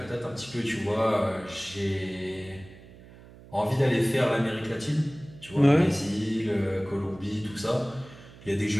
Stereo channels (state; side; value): noise; right; hum, 20 dB below the sound